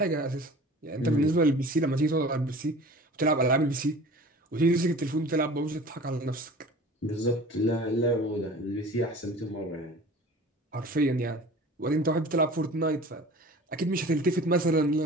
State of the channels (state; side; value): normal; both; correlation 0.42